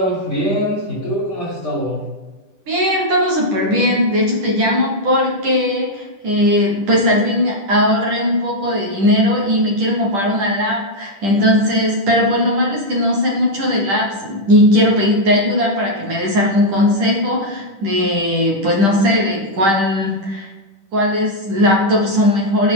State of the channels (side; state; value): left; late; 10 ms